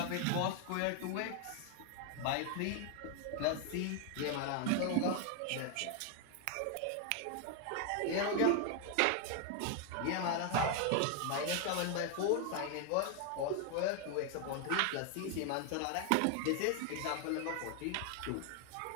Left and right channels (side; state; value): both; different; correlation 0.00